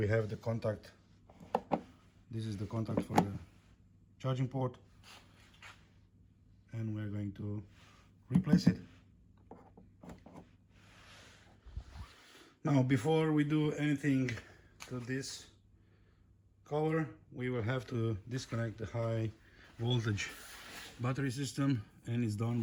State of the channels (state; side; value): identical; both; correlation 1.00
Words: have the contact. This is the contact for the charging port, and we're going to replace it. Now, before we do anything to this cover, we will have to disconnect the high voltage battery system, and it's